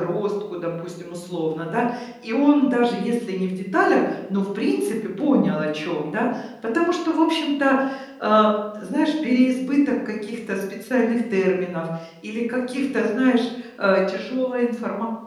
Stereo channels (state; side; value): identical; both; correlation 1.00